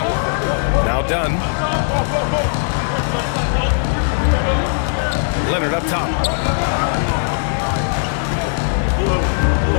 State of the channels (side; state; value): right; silent; digital silence